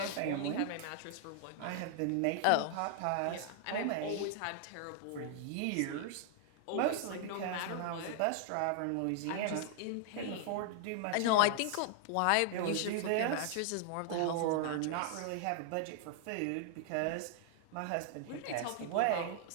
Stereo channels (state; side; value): different; both; correlation 0.00